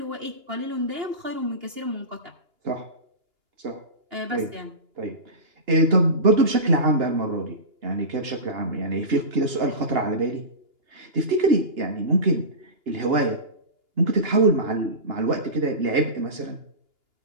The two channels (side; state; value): left; late; 2.8 ms